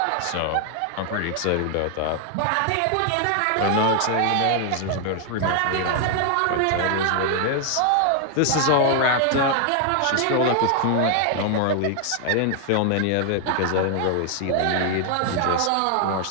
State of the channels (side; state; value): both; different; correlation 0.00